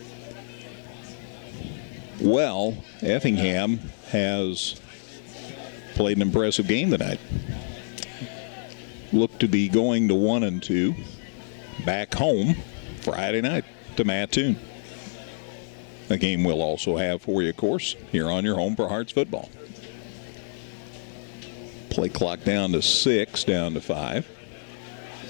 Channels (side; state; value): right; silent; 60 dB below the other